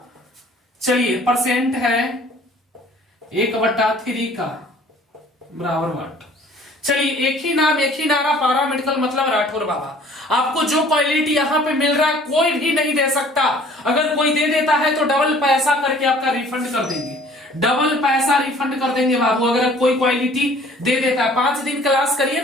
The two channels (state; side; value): normal; both; correlation 0.53